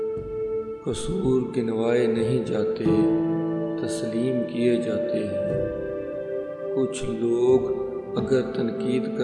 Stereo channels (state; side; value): identical; both; correlation 1.00